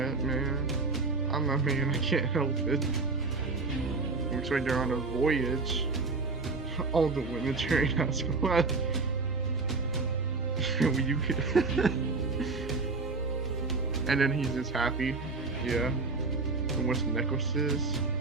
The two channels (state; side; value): quieter; left; 3.9 dB